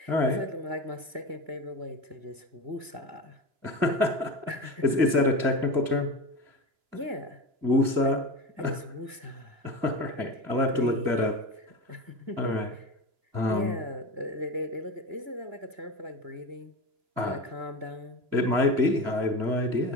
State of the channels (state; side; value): late; left; 2.9 ms